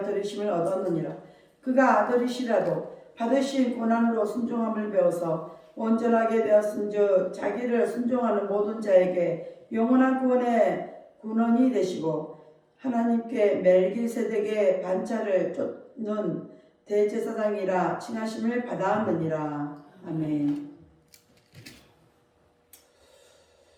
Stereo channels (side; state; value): both; identical; correlation 1.00